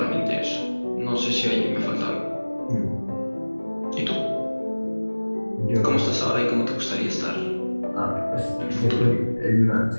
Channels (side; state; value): both; inverted; correlation -1.00